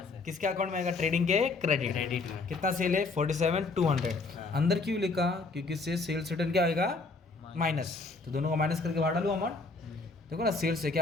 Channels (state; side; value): quieter; right; 3.8 dB